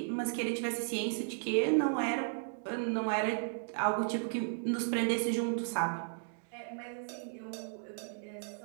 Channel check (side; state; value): left; silent; digital silence